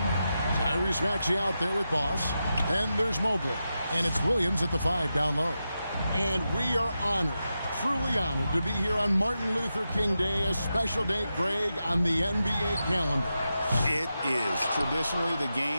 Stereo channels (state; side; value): inverted; both; correlation -0.89